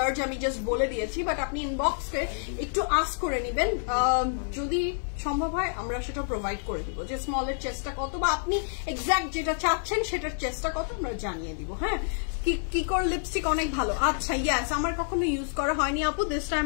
আমি জাস্ট বলে দিয়েছি, বাট আপনি ইনবক্সে একটু আস্ক করে নেবেন, যদি সম্ভব হয় আমরা সেটা প্রোভাইড করে দিব যে স্মলের চেষ্টা কত বা আপনি এক্সাক্ট যেটা চাচ্ছেন সেটার চেষ্টা কত আমরা জানিয়ে দিব। হ্যাঁ, কিকোর লিপস্টিক অনেক ভালো। আচ্ছা ইয়াস, আমার কখনো ইউজ করা হয়নি আপু, দিস টাইম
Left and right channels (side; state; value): right; silent; digital silence